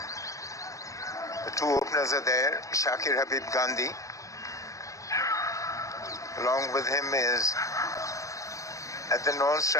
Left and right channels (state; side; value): late; right; 0.16 ms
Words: The two openers are there, Shakir Habib Gandhi. Along with him is, at the